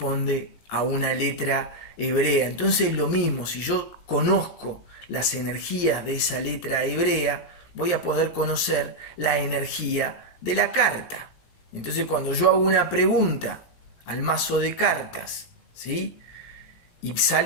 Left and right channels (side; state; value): right; late; 18 ms